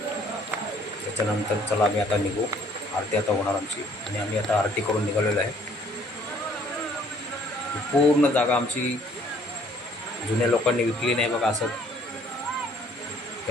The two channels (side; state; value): both; normal; correlation 0.60